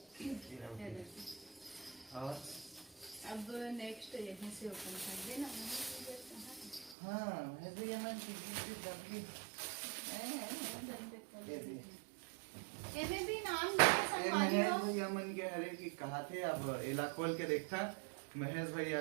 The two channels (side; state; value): left; drops out; at 7.0 s